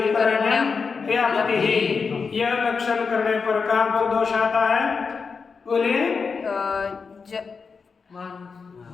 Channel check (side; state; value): right; quieter; 5.2 dB